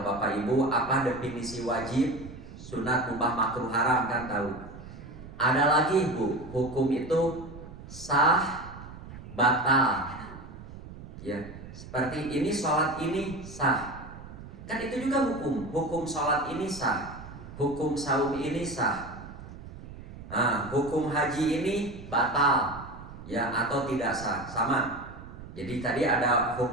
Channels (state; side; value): noise; right; rumble, 14 dB below the sound